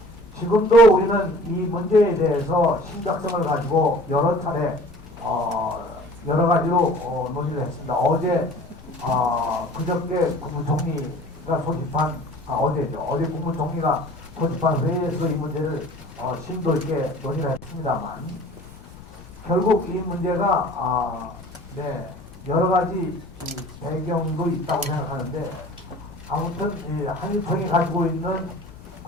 지금도 우리는 이 문제에 대해서 심각성을 가지고 여러 차례 여러 가지로 논의를 했습니다. 어제 그저께 국무총리가 소집한 어제죠. 어제 국무총리가 소집한 회의에서 이 문제를 심도 있게 논의를 했습니다만 결국 이 문제가 여러 가지 배경도 있다고 생각하는데 아무튼 한일총이 가지고 있는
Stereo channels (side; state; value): left; noise; rumble, 19 dB below the sound